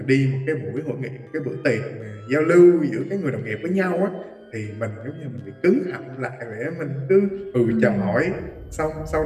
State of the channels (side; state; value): both; identical; correlation 1.00